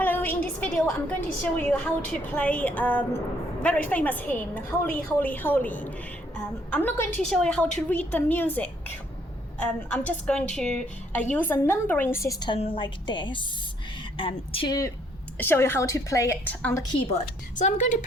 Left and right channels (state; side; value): normal; both; correlation 0.67